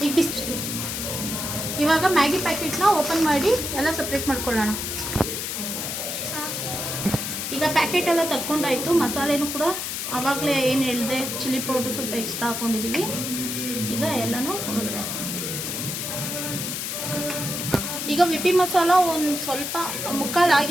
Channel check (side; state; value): left; noise; hiss, 4 dB below the sound